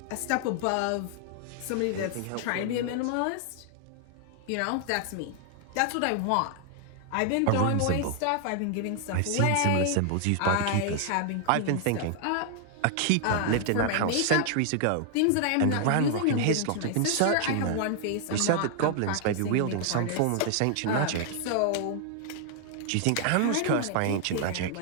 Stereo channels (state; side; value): different; both; correlation 0.00